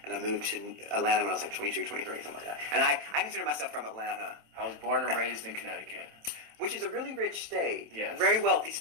and I moved to Atlanta when I was like 22, 23, something like that. And I consider myself from Atlanta. I was born and raised in Connecticut. Which is a really rich state. Yes. Very wealthy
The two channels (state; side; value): late; left; 27 ms